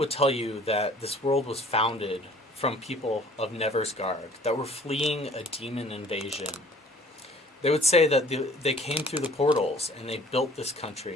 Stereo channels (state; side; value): normal; both; correlation 0.53